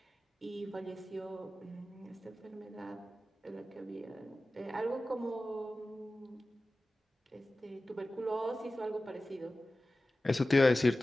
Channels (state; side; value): normal; both; correlation 0.96